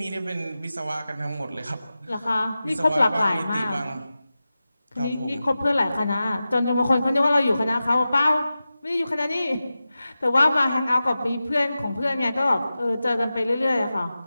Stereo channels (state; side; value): inverted; both; correlation -0.94